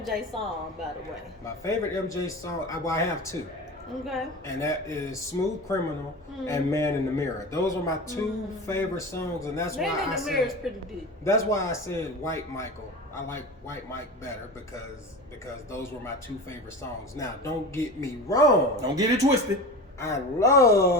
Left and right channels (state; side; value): normal; both; correlation 0.30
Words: song, by the way? My favorite MJ song, I have two, Okay. and that is "Smooth Criminal" and "Man in the Mirror." Those are my two favorite songs, and that's Man why in I the Mirror is said pretty deep. that's why I said White Michael. I like White Mike better because those were my two favorite songs. Now, don't get me wrong. Don't get it twisted. I